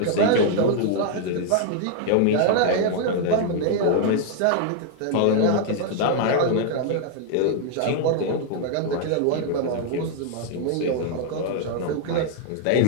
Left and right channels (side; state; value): both; different; correlation 0.00